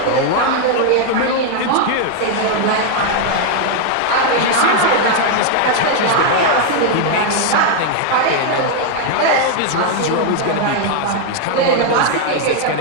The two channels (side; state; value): both; different; correlation 0.00